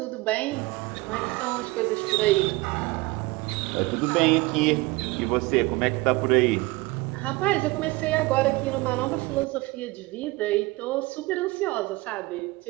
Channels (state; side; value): quieter; left; 22.1 dB